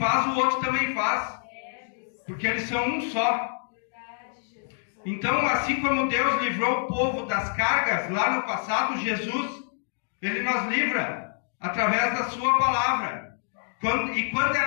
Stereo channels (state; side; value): silent; right; digital silence